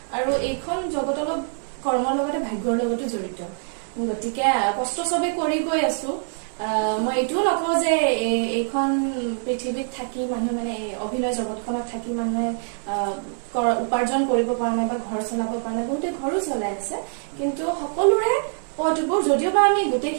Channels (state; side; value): silent; left; 62 dB below the other